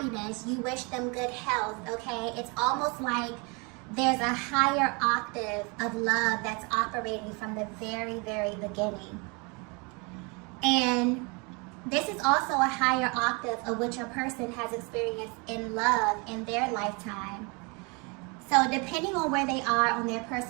you wish them good health, okay? It's almost like there's a higher octave of love that's operating from the very, very beginning. And this is also a higher octave of what your person has experienced in love in their lifetime. So depending on where they are on their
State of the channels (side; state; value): left; quieter; 31.0 dB